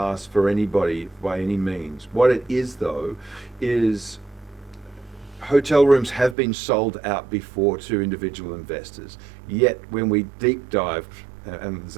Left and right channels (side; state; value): left; drops out; at 6.4 s